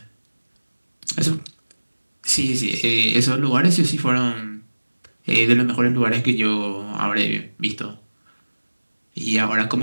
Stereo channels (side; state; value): both; inverted; correlation -1.00